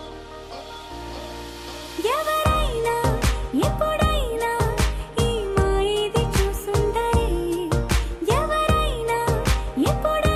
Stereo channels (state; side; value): identical; both; correlation 1.00